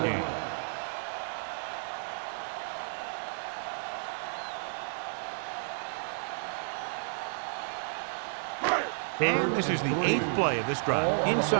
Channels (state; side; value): silent; left; digital silence